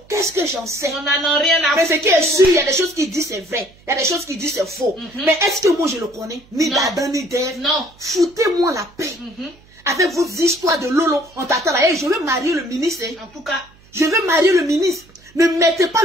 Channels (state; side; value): noise; right; hum, 28 dB below the sound